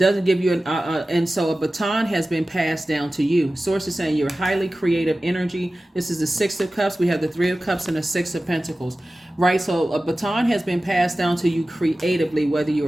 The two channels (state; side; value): normal; both; correlation 0.96